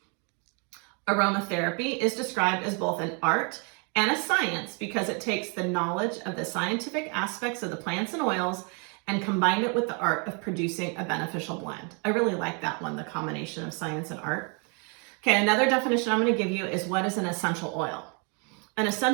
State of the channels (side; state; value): left; quieter; 35.6 dB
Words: Aromatherapy is described as both an art and a science because it takes the knowledge of the scientific aspects of the plants and oils and combined it with the art of producing a beneficial blend. I really like that one, the combination of science and art. Okay, another definition I'm going to give you is what is an essential oil. An